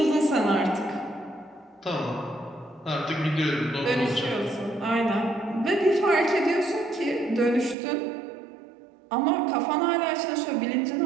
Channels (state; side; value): drops out; left; at 7.8 s